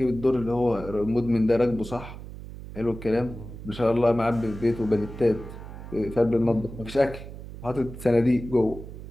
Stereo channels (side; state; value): right; noise; hum, 12 dB below the sound